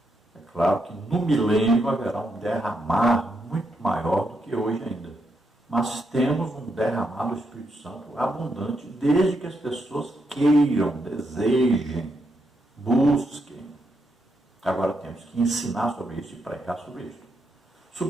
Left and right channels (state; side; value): normal; both; correlation 0.80